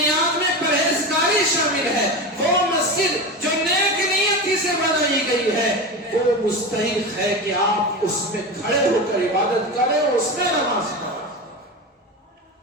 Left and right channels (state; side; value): normal; both; correlation 0.24